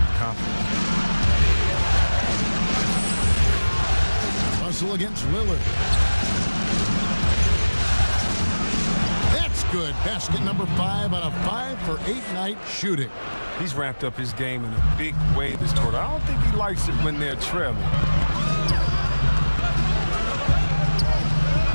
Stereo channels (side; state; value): both; inverted; correlation -1.00